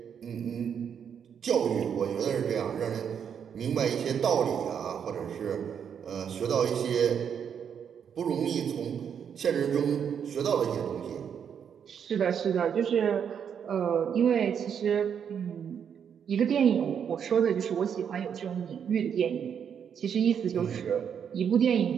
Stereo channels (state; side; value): quieter; left; 7.8 dB